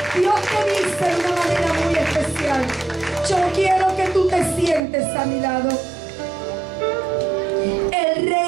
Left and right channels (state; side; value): drops out; left; at 4.8 s